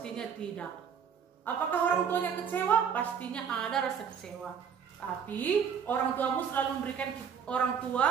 tidak. Apakah orang tuanya kecewa? Pastinya ada rasa kecewa. Tapi orang tua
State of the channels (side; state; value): left; quieter; 7.3 dB